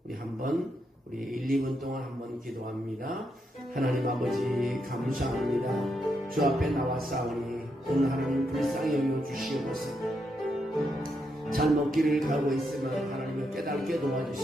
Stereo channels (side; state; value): both; normal; correlation 0.81